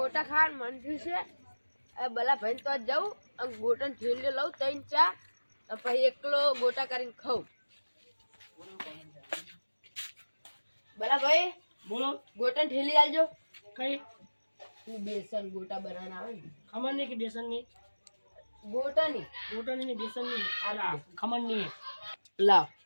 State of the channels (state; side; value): inverted; both; correlation -1.00